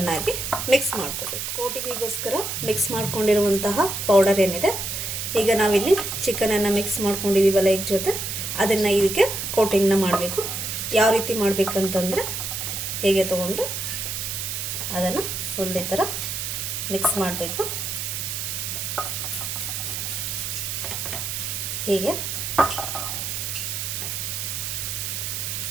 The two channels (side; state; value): right; noise; hiss, 3 dB below the sound